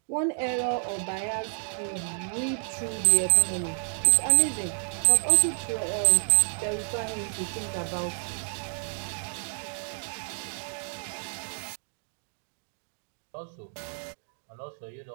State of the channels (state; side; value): silent; left; digital silence